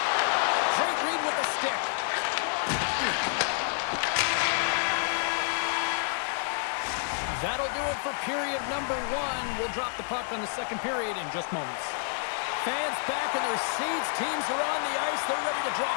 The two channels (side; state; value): right; silent; digital silence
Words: Great read with the stick. That'll do it for period number one. We'll drop the puck on the second period in just moments. Fans back in their seats. Teams are on the ice. They're ready to